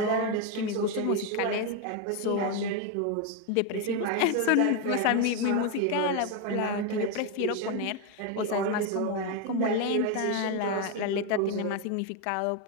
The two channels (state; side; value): different; both; correlation 0.02